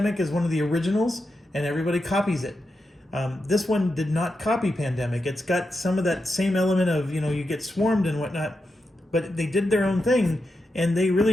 is one of the originals, and everybody copies it. This one did not copy Pandemic. It's got some of that same element of, you know, you get swarmed and whatnot, but they did their own thing, and they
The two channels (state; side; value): normal; both; correlation 0.87